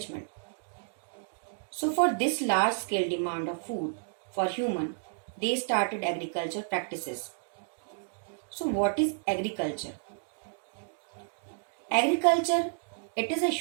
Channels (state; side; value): silent; left; digital silence